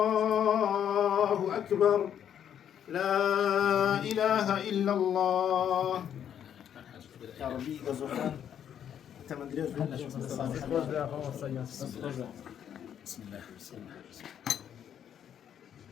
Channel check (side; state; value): right; quieter; 9.3 dB